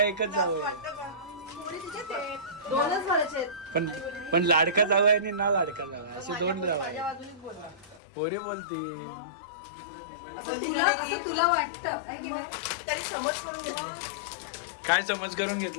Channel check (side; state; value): right; drops out; at 8.0 s